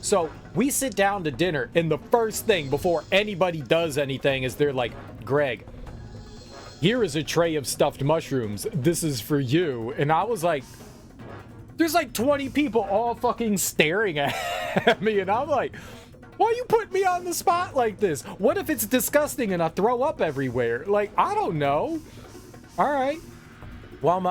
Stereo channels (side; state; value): both; identical; correlation 1.00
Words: we sit down to dinner, and the first thing before anybody does anything is they're like, Greg, here is a tray of stuffed mushrooms. This is for you. And I was like, there's like 20 people all fucking staring at me. And I'm like, why you put me on the spot like this? What if it's disgusting and I throw up everywhere? Like, I don't know. All right. Well,